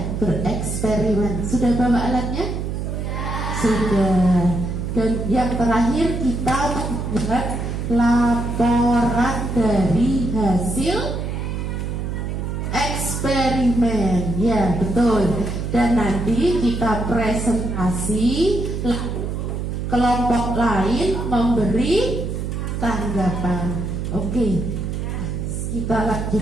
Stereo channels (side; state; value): right; noise; hum, 3 dB below the sound